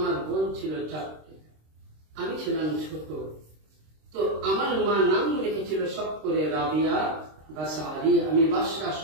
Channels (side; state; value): left; late; 26 ms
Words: বোন ছিল 4টে, আমি ছিলাম ছোট। তো আমার মা নাম রেখেছিল সব করে রাবিয়া বাসারি, আমি বাসরা